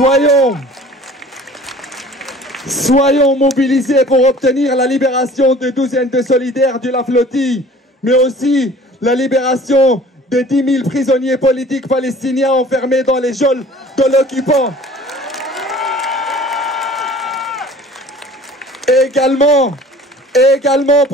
Soyons mobilisés pour obtenir la libération des douzaines de solidaires de la flottille, mais aussi la libération des 10 000 prisonniers politiques palestiniens enfermés dans les geôles de l'occupant. Et également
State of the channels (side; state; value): both; normal; correlation 0.48